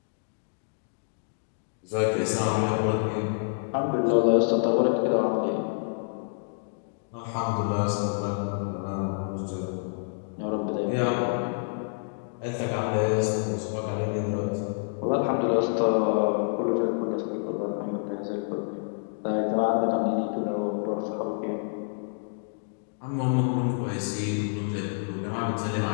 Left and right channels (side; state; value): right; silent; digital silence